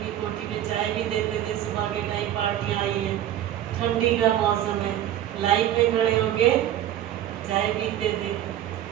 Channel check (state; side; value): quieter; left; 11.9 dB